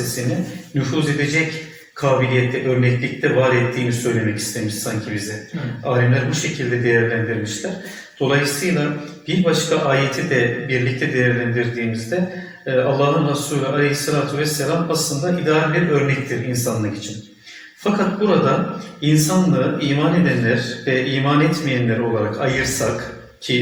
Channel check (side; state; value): both; identical; correlation 1.00